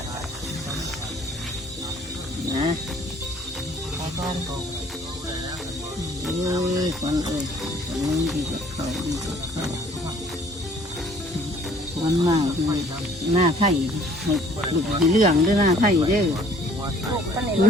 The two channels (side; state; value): both; normal; correlation 0.57